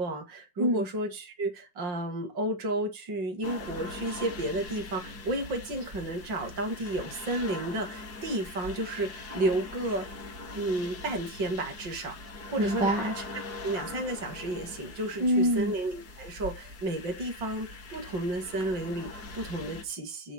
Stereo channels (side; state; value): left; late; 5.6 ms